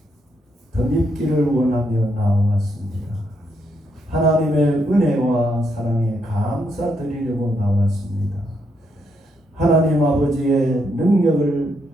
덧입기를 원하며 나왔습니다. 하나님의 은혜와 사랑에 감사드리려고 나왔습니다. 하나님 아버지의 능력을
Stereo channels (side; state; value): both; normal; correlation 0.78